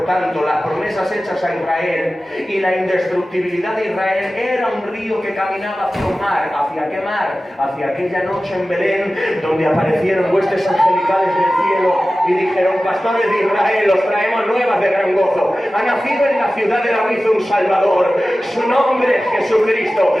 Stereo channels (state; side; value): normal; both; correlation 0.95